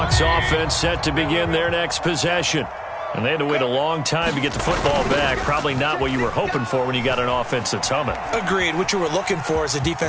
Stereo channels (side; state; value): both; identical; correlation 1.00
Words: offense set to begin their next possession. And they had to wait a long time to get the football back. Probably not what you were hoping for when you got an offense that's humming. Agreed. What you were looking for is the